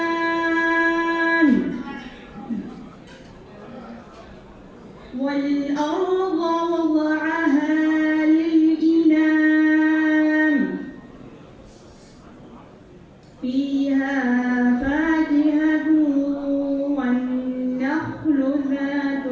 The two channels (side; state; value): both; identical; correlation 1.00